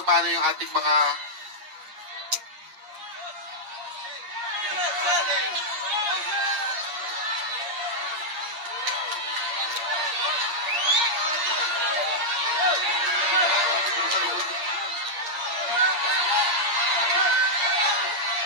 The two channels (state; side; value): late; left; 8.5 ms